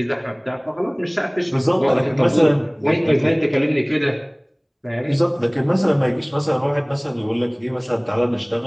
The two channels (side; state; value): both; identical; correlation 1.00